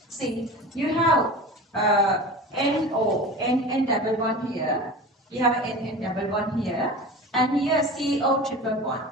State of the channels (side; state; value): both; normal; correlation 0.33